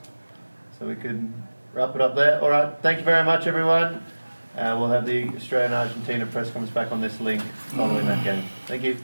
so we could wrap it up there. All right, thank you very much, everyone. We'll have the Australia-Argentina press conference back on this link following that game. Thank you.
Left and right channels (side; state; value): both; inverted; correlation -1.00